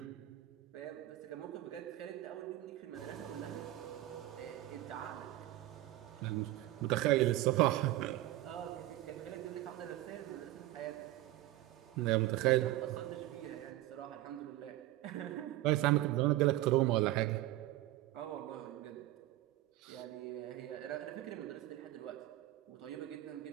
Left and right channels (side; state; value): left; quieter; 16.0 dB